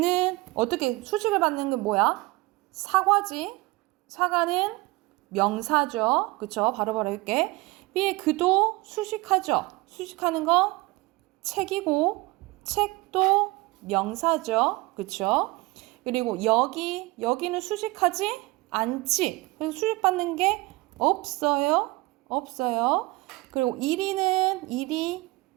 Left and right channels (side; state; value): left; quieter; 22.5 dB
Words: 어떻게 수식을 받는 건 뭐야? 사과지. 사과는 명사죠. 그쵸? 바로바로 할게. B의 그도 수식하죠. 수식하는 건 책이고 책도 명사죠. 그쵸? 그리고 여기는 수식하지 않지. 그래서 수식받는 게 없어요. 없어요. 그리고 일이